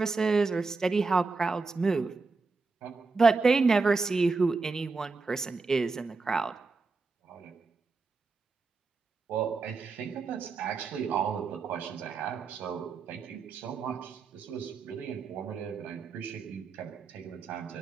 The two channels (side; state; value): left; quieter; 4.2 dB